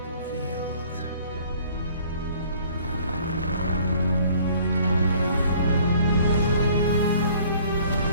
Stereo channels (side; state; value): both; inverted; correlation -0.55